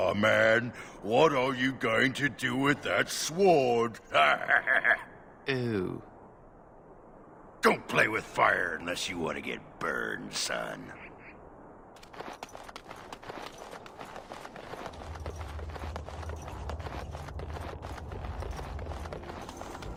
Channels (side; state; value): both; identical; correlation 1.00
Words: man. What are you going to do with that sword? Ew. Don't play with fire unless you want to get burned, son.